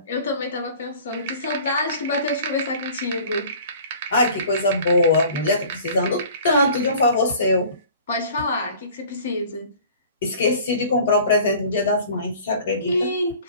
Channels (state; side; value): inverted; both; correlation -0.47